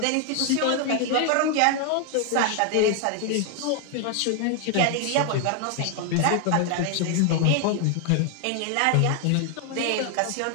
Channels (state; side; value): different; both; correlation 0.00